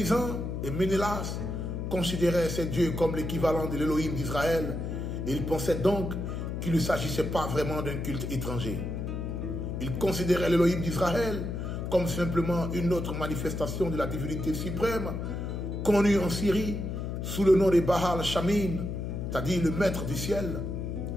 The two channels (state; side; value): noise; left; hum, 4 dB below the sound